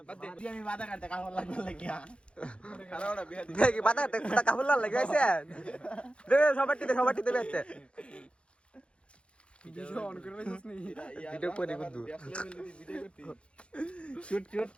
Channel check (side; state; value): right; late; 0.058 ms